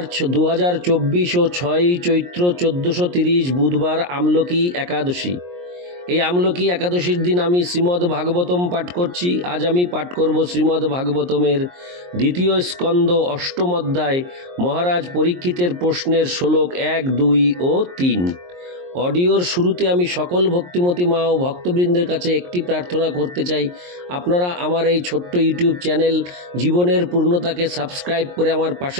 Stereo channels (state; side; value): late; left; 23 ms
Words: 2024 ও 6 চৈত্র 1430 বুধবার আমলকি একাদশী। এই আমলকি একাদশীর দিন আমি শ্রীমদ্ ভাগবতম পাঠ করছি। আজ আমি পাঠ করব শ্রীমদ্ ভাগবতমের দ্বিতীয় স্কন্দ অষ্টম অধ্যায় মহারাজ পরীক্ষিতের প্রশ্নের শ্লোক 1, 2 ও 3। অডিওর শুরুতে আমি সকল ভক্তিমতী মা ও ভক্তবৃন্দের কাছে একটি প্রার্থনা করতে চাই, আপনারা আমার এই ছোট্ট ইউটিউব চ্যানেল জীবনের পূর্ণতাকে সাবস্ক্রাইব করে আমার